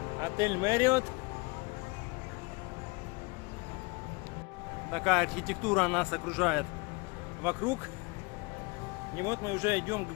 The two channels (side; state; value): right; quieter; 27.6 dB